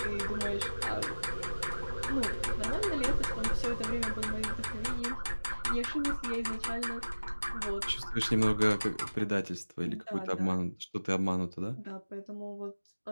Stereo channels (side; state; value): both; inverted; correlation -1.00